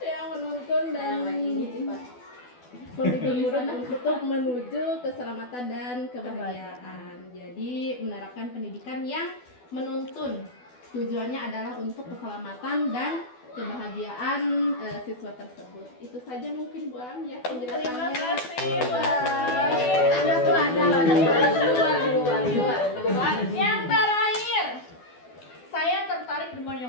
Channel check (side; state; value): right; late; 12 ms